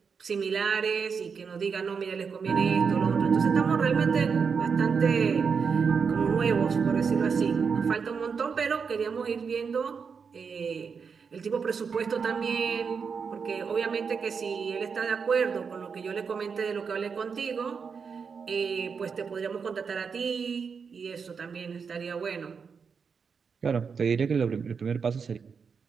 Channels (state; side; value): quieter; left; 5.9 dB